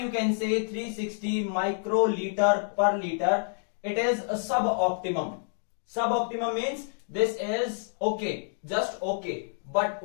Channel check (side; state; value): right; silent; digital silence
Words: you can say 360 microliter per liter. It is a suboptimum. Suboptimum means this is okay, just okay. But